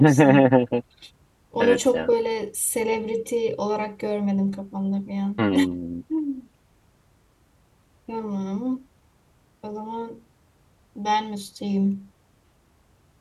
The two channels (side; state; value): both; identical; correlation 1.00